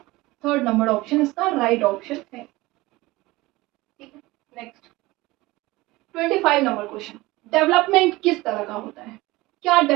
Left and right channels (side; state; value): left; quieter; 20.3 dB